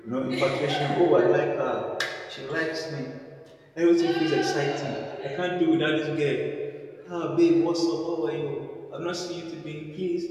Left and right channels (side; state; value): both; identical; correlation 1.00